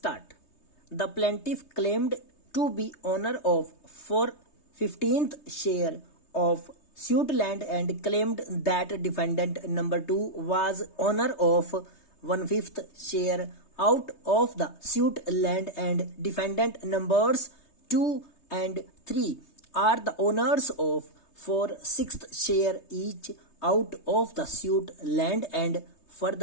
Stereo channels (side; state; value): right; late; 3.3 ms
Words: The plaintiff claimed to be owner of 4/15th share of suit land and claimed that defendant number 2 was owner of 1/5th share out of the suit land and defendant numbers 2 and 3 are the owners of 4/6th share each out of the suit land and